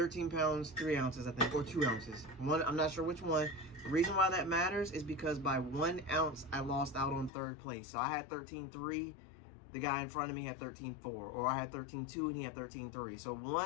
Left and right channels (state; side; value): drops out; right; at 7.3 s